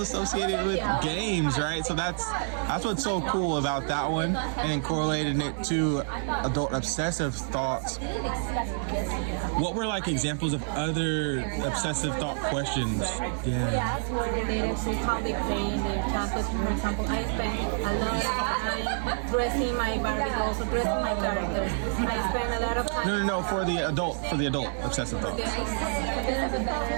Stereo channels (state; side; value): silent; left; 57 dB below the other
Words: with games, right? So that's what's so cool about that one, and correlating it to adult obsessive thoughts. What were like examples of other obsessive thought questions? Yes, were related to how they play in their childhood. For example, I spent a lot of time dressing my Barbie dolls or dressing my characters. I spent a lot of time. No, for the adult obsessive thoughts.